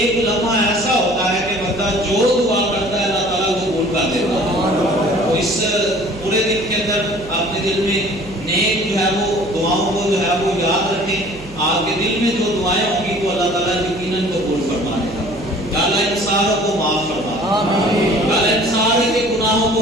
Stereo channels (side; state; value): right; noise; hum, 18 dB below the sound